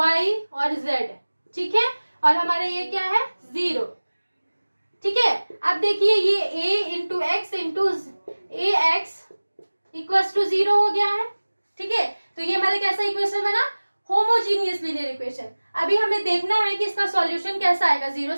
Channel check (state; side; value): inverted; both; correlation -1.00